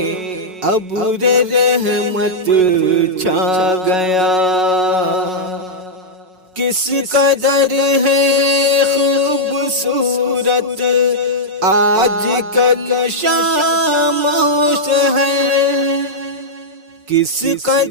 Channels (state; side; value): late; left; 5.4 ms